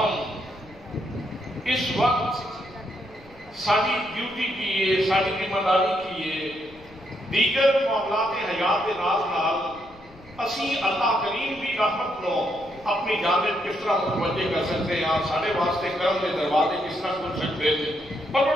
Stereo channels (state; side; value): noise; left; rumble, 23 dB below the sound